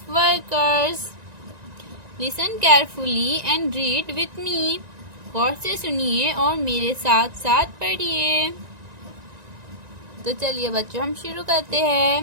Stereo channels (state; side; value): late; left; 1.9 ms